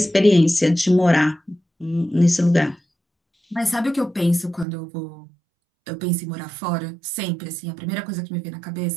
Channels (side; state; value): left; drops out; at 4.7 s